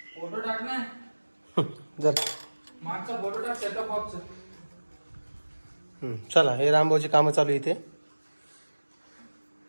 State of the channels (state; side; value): inverted; both; correlation -1.00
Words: जर मागचा फोटो टाक सेटअप बॉक्स. चला, हे रामभाऊची कामं चालू आहे इथे.